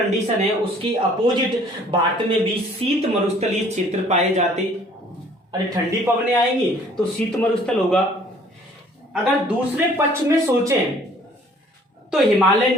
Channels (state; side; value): normal; both; correlation 0.56